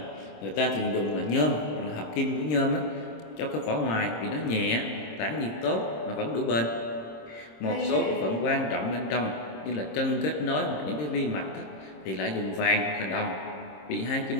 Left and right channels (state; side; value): late; right; 26 ms